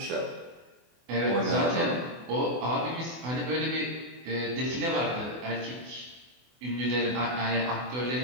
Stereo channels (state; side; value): late; left; 24 ms